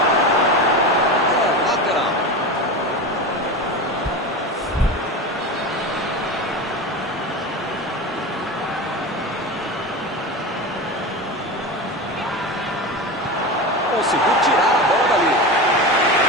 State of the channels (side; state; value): both; normal; correlation 0.25